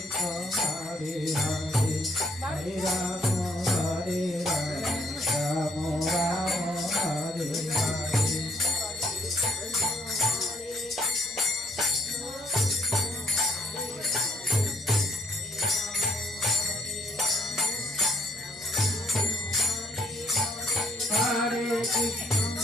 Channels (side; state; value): both; normal; correlation 0.66